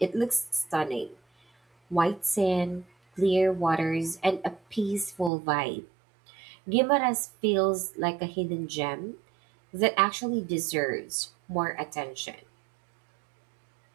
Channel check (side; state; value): left; drops out; at 5.3 s